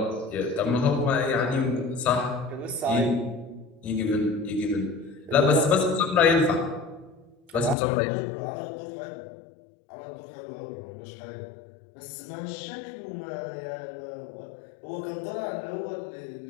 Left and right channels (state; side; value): drops out; right; at 7.8 s